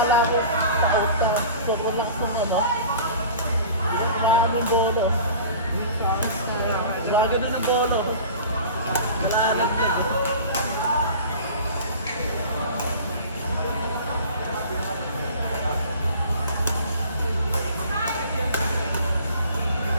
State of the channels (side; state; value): both; inverted; correlation -0.42